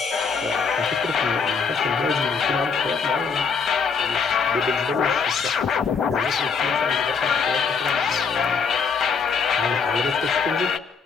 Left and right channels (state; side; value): quieter; right; 5.6 dB